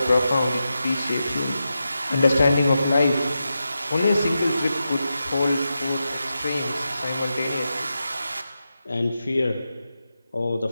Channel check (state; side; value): inverted; both; correlation -0.89